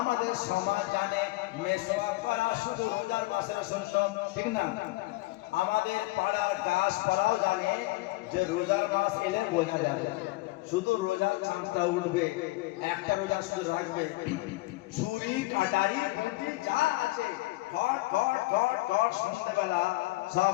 সমাজ জানে মিসওয়াক করা শুধু রোজার মাসের সুন্নত। ঠিক না? আমাদের পাড়ার গাছপালাও জানে যে রোজার মাস এলে বোঝা যাবে, শুধু রোজার চাঁদটা উঠবে, একটা রোজা শুধু রাখবে, ছুরি কাটারি বটি যা আছে ঘট ঘট ঘট ঘট সন্ধ্যেবেলা সব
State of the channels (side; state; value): right; quieter; 20.9 dB